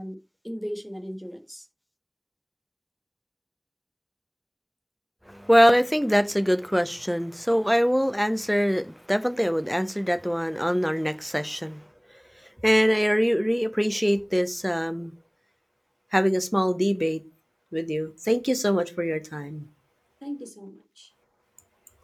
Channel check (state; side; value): identical; both; correlation 1.00